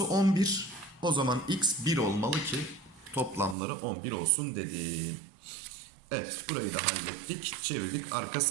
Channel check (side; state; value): left; drops out; at 3.6 s